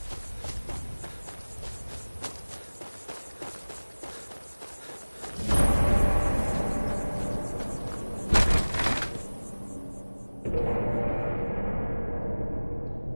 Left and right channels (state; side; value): inverted; both; correlation -1.00